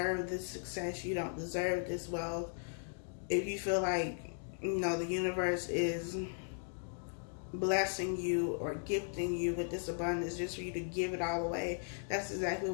this success, you don't deserve this wealth, if you feel like, the universe is blessing you or gifting you with this abundance just for you to give it all away, that's exactly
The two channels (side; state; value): right; silent; digital silence